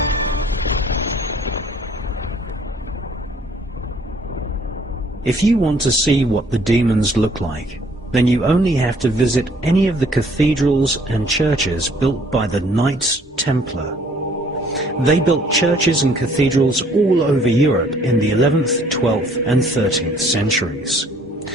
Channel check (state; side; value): normal; both; correlation 0.60